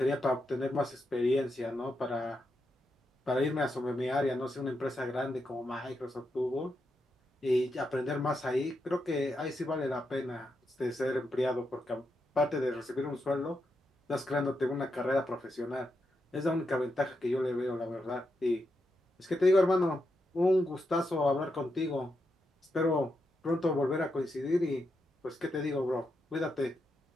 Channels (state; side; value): normal; both; correlation 0.84